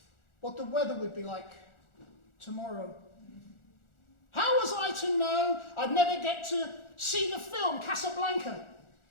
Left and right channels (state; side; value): late; right; 1.4 ms